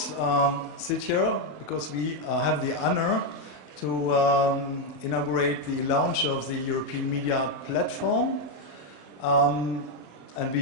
sit here because we have the honor to inaugurate the launch of the European Media Art Platform. And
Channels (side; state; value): right; late; 27 ms